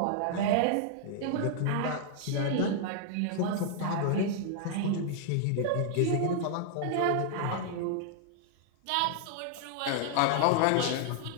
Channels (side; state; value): both; different; correlation -0.01